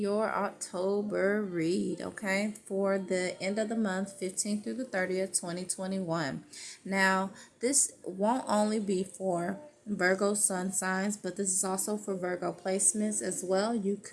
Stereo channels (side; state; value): both; identical; correlation 1.00